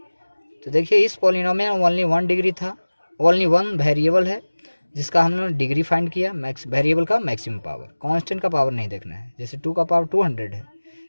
तो देखिए इस पॉलिनोमियल में ओनली 1 डिग्री था, ओनली 1 वेरिएबल है जिसका हमने डिग्री फाइंड किया, वेरिएबल का मैक्सिमम पावर। कांस्टेंट का पावर नहीं देखना है, जैसे 2 का पावर 200 है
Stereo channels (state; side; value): inverted; both; correlation -1.00